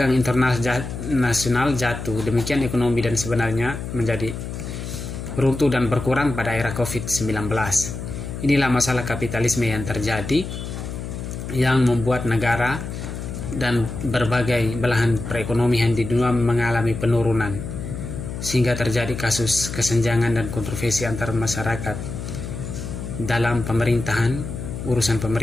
internasional jatuh, demikian ekonomi dan sebenarnya menjadi runtuh dan berkurang pada era COVID-19. Inilah masalah kapitalisme yang terjadi, yang membuat negara dan berbagai belahan perekonomian di dunia mengalami penurunan, sehingga terjadi kasus kesenjangan dan kontroversi antar masyarakat dalam pemerintahan, urusan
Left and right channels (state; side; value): noise; left; hum, 7 dB below the sound